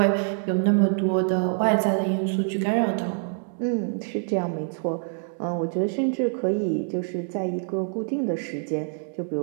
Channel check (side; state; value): left; silent; 61 dB below the other